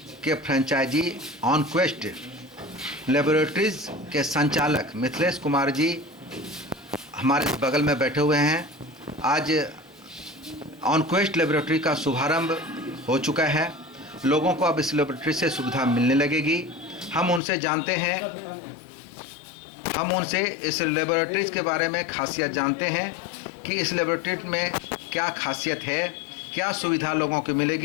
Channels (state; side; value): drops out; right; at 17.4 s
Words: के फ्रेंचाइजी ऑनक्वेस्ट लेबोरेटरीज के संचालक मिथिलेश कुमार जी हमारे बगल में बैठे हुए हैं। आज ऑनक्वेस्ट लेबोरेटरी का शुभारंभ हो चुका है। लोगों को अब इस लेबोरेटरी से सुविधा मिलने लगेगी। हम उनसे जानते हैं, हम उनसे इस लेबोरेटरीज के बारे में खासियत जानते हैं कि इस लेबोरेटरी में क्या खासियत है, क्या सुविधा लोगों को